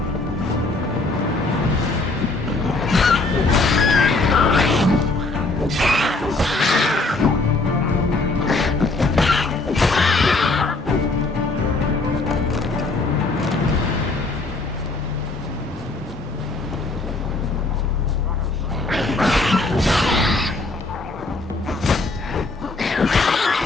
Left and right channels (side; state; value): right; quieter; 3.3 dB